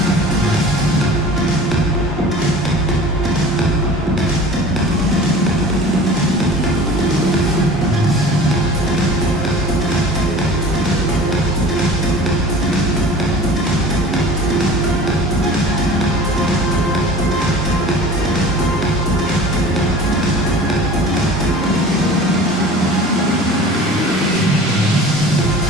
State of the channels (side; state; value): both; normal; correlation 0.41